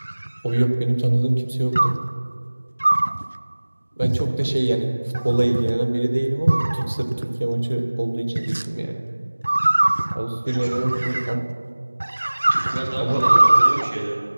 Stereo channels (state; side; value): inverted; both; correlation -1.00